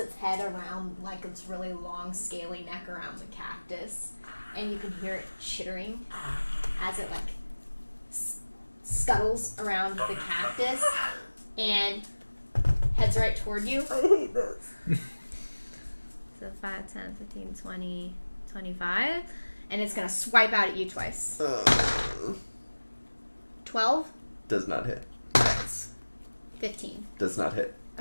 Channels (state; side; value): inverted; both; correlation -1.00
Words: head around its really long scaly neck around the cactus, and you can hear it chittering as it scuttles around the cactus and heads right toward you. I hate this. So 5, 10, 15, 20, 25, and it's gonna swipe out at you twice. 12, Does not hit. 15. Does not hit.